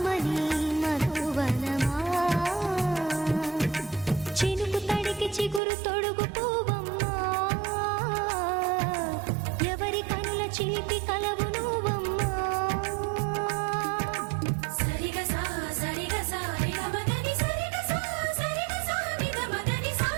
మధువనమా. చినుకు తడికి చిగురు తొడుగు పువ్వమ్మా, ఎవరి కనుల చిలిపి కలవు నువ్వమ్మా. సరిగసా సరిగసా రిగమదని సరిగసా సరిగసా నిగమదని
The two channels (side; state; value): left; drops out; at 5.6 s